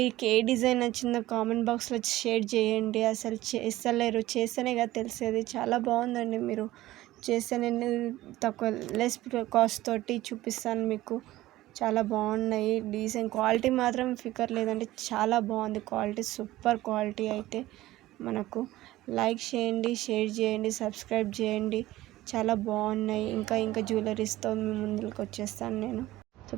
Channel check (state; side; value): quieter; left; 16.4 dB